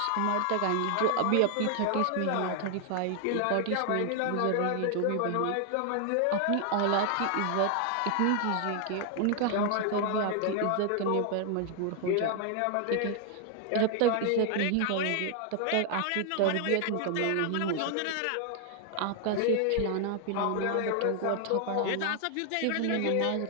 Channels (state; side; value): different; both; correlation 0.00